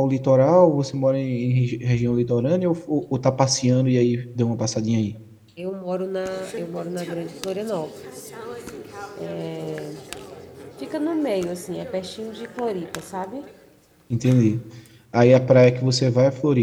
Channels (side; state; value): both; identical; correlation 1.00